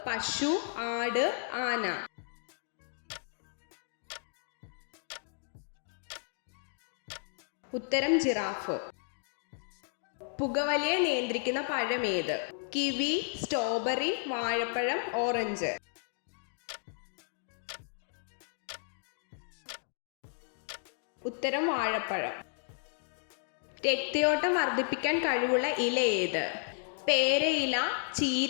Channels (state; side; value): silent; right; digital silence